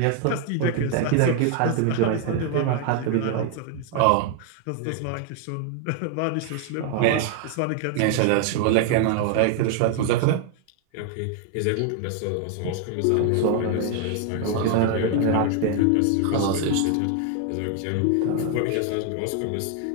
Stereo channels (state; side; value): different; both; correlation 0.00